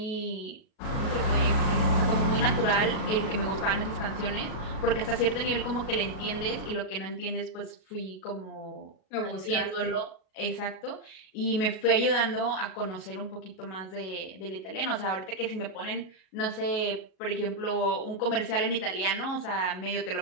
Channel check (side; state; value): right; late; 38 ms